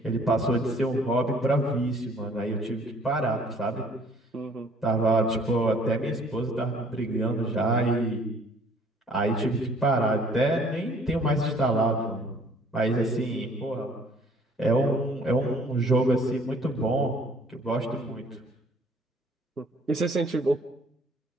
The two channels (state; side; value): normal; both; correlation 0.57